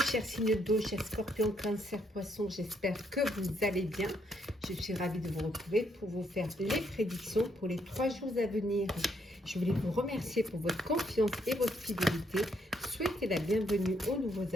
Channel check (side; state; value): both; normal; correlation 0.73